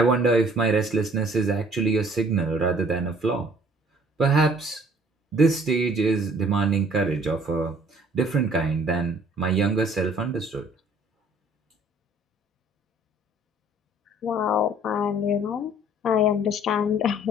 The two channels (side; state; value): both; normal; correlation 0.56